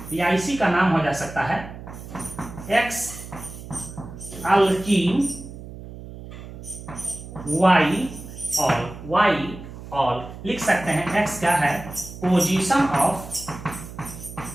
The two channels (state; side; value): noise; right; hum, 13 dB below the sound